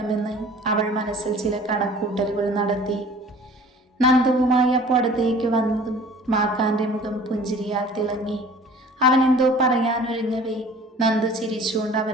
അവൾ മനസ്സിൽ ചില കണക്കൂട്ടലുകൾ നടത്തി. നന്ദുവുമായി അപ്പോൾ അടുത്തേക്ക് വന്നതും മാക്കാന്റെ മുഖം പുഞ്ചിരിയാൽ തിളങ്ങി. അവൻ എന്തോ പറയാനൊരുങ്ങവേ നന്ദു ചിരിച്ചുകൊണ്ട്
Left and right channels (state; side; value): normal; both; correlation 0.48